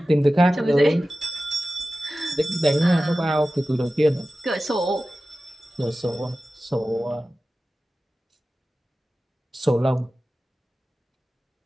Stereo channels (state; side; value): normal; both; correlation 0.95